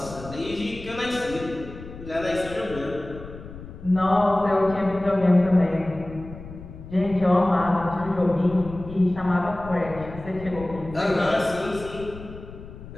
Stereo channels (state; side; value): noise; left; rumble, 14 dB below the sound